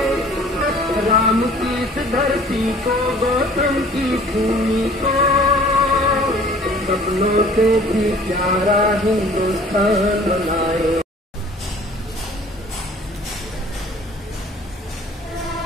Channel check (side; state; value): both; normal; correlation 0.50